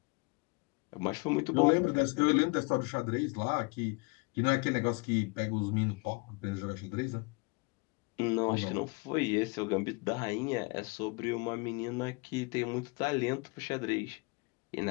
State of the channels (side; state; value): right; quieter; 29.3 dB